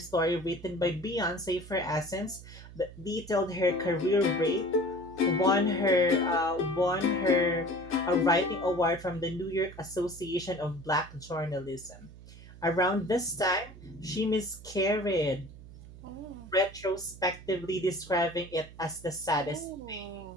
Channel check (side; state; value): right; noise; hum, 17 dB below the sound